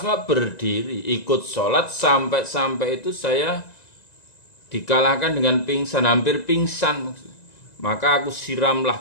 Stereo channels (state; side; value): late; right; 1.9 ms